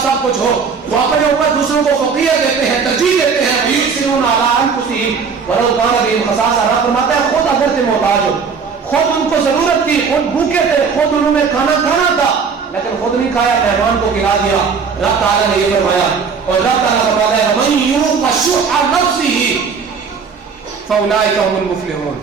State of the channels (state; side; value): quieter; left; 5.7 dB